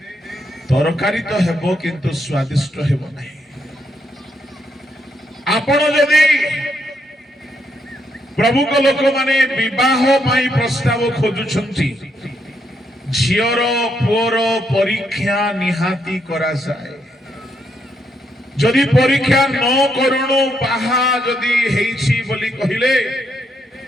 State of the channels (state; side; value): normal; both; correlation 0.77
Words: तरकारी तो हेबो किंतु स्वादिष्ट हेबो नहीं। आपण जदि प्रभु को लोक माने विवाह पाई प्रस्ताव खोजुछंती झियर पुअर परीक्षा निहाती करा जाए। जदि परीक्षा न करूनु बाहा जदि हेइछि बोली कहिले